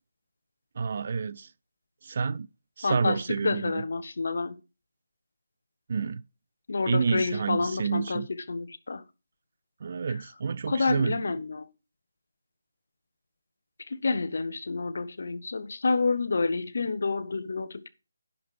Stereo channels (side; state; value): both; inverted; correlation -0.88